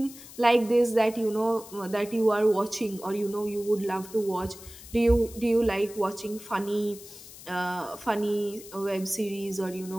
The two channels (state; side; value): noise; left; hiss, 17 dB below the sound